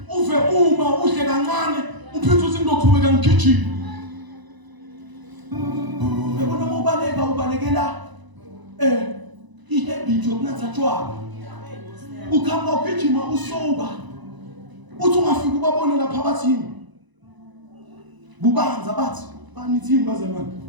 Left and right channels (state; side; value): late; left; 1.0 ms